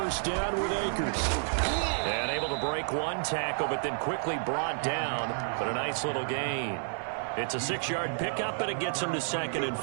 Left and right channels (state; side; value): silent; left; 58 dB below the other